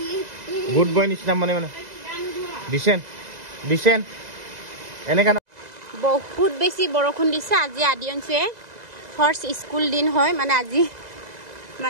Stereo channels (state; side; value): late; left; 2.0 ms